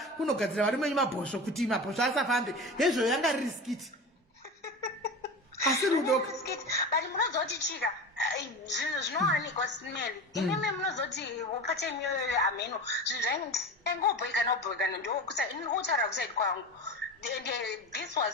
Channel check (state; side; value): normal; both; correlation 0.28